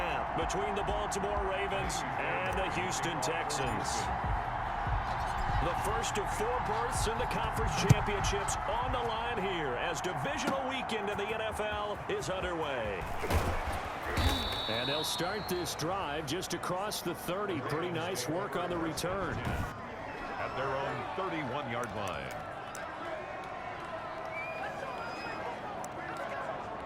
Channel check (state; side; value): identical; both; correlation 1.00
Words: between the Baltimore Ravens and the Houston Texans. The first of 4 berths in the conference championships on the line here as divisional weekend in the NFL is underway. And they'll start this drive just across the 30. Pretty nice work on the return. At their own 31-yard line.